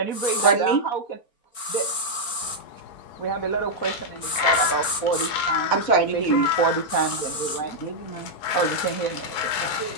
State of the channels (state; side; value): late; right; 4.4 ms